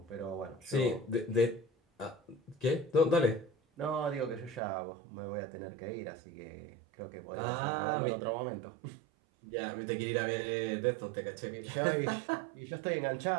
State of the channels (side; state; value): left; drops out; at 4.6 s